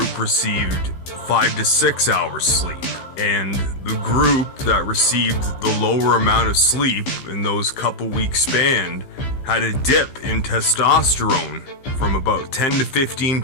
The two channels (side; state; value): right; late; 15 ms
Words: received 5 to 6 hours sleep. And the group that received the lower amount of sleep in those couple weeks span had a dip in testosterone from about 10 to